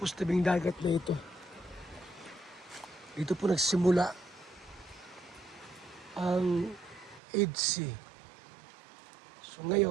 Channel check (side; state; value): left; drops out; at 7.2 s